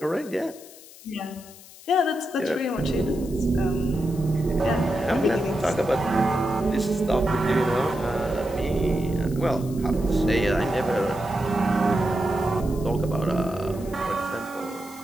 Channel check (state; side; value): noise; left; hiss, 20 dB below the sound